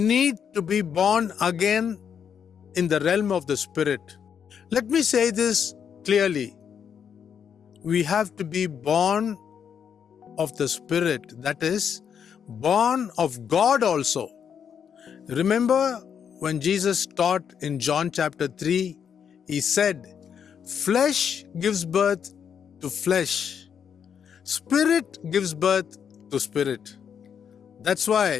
to be born again in the realm of the Spirit. Let me say this clearly. We have to be born of the Spirit, that is, born of God also. Remember when Jesus taught in John chapter 3, he said, flesh gives birth to flesh. Spirit gives birth to spirit. That's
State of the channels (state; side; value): quieter; right; 7.7 dB